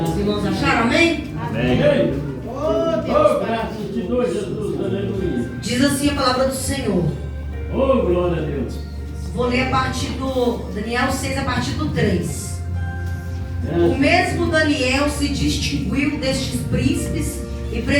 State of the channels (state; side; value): identical; both; correlation 1.00